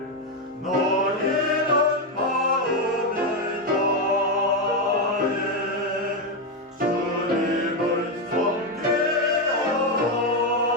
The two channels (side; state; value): both; normal; correlation 0.07